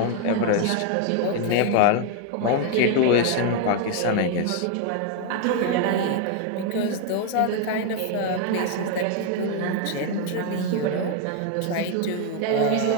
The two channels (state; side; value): different; both; correlation 0.01